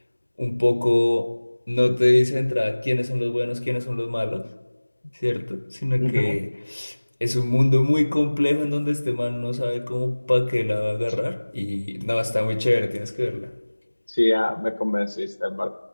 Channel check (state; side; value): inverted; both; correlation -1.00